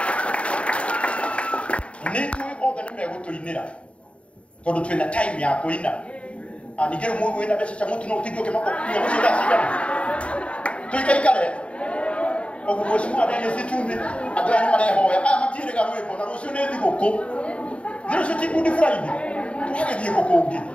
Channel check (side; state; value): right; late; 0.061 ms